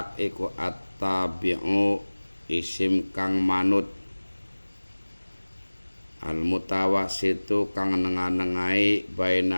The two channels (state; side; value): inverted; both; correlation -1.00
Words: iku at-tabi'u isim kang manut, al-mutawassitu kang nengah-nengahi